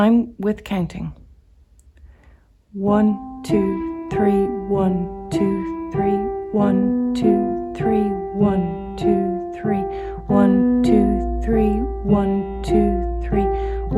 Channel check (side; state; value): both; identical; correlation 1.00